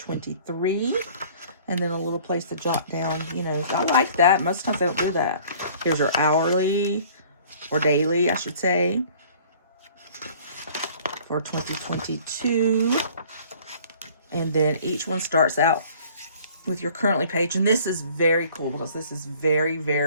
And then a little place to jot down, you know. I like that. Most times they don't do that. Here's your hourly or daily, I should say, for 2022. And then each one starts out with your currently page. And this is very cool because this is very,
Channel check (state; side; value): inverted; both; correlation -0.52